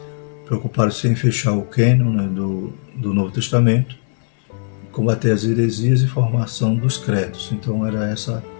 preocuparam-se em fechar o cânon, né, do Novo Testamento, combater as heresias e formação dos credos. Então era essa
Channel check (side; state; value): right; silent; digital silence